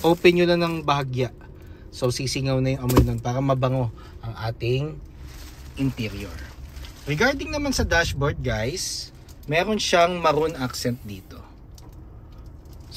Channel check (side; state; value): both; identical; correlation 1.00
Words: nyo lang ng bahagya. So sisingaw na yung amoy nun para mabango ang ating interior. Regarding naman sa dashboard guys, meron siyang maroon accent dito.